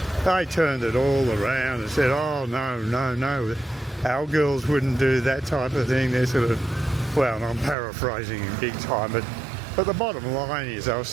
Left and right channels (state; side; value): drops out; left; at 7.8 s